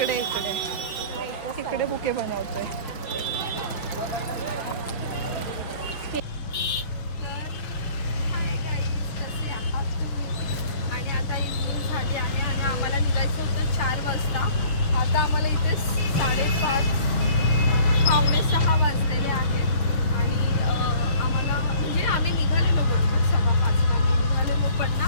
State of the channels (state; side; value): late; right; 6.6 ms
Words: बुके बनवतोय. आणि आता इव्हिनिंग झाली आहे आणि आम्हाला निघायचं होतं 4 वाजता. आता आम्हाला इथे 5:30 पावणे 6 वाजलेले आहेत. आणि आम्हाला म्हणजे आम्ही निघालेलो बरोबर 5:15 आम्ही निघालेलो पण ना